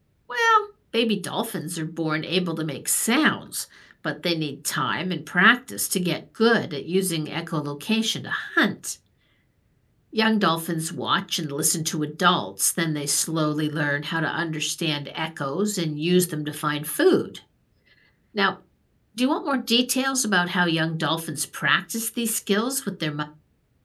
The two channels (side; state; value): both; identical; correlation 1.00